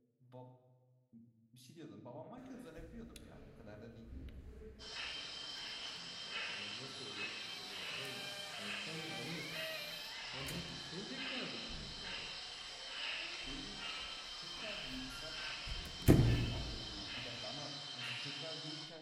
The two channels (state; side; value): identical; both; correlation 1.00